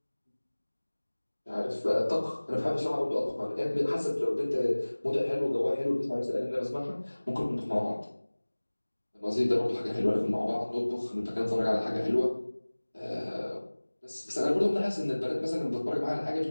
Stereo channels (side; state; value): both; inverted; correlation -1.00